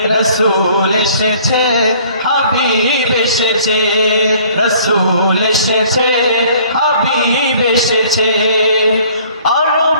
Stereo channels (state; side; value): inverted; both; correlation -0.55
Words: রসূল এসেছে, হাবিব এসেছে, রসূল এসেছে, হাবিব এসেছে।